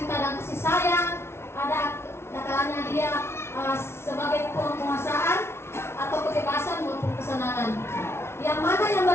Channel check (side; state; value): right; late; 0.12 ms